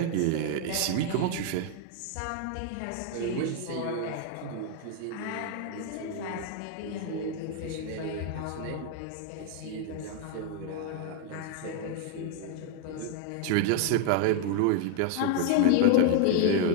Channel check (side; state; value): both; different; correlation 0.00